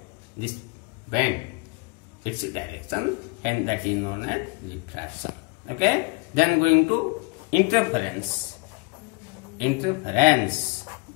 this bend its direction, and that is known as diffraction. Okay? Then going to interference. Interference.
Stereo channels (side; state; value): right; quieter; 29.2 dB